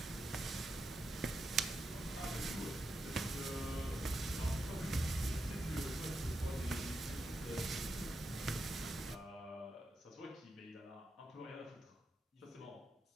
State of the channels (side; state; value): both; normal; correlation 0.86